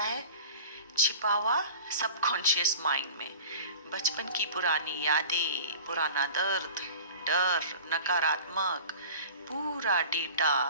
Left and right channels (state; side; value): inverted; both; correlation -0.40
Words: है? छिपा हुआ सबकॉन्शियस माइंड में। बचपन की पुरानी यादें, पुराना दर्द, डर, नकारात्मक पूरा